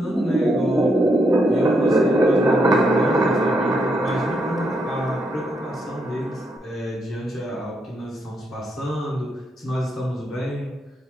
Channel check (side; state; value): both; normal; correlation 0.78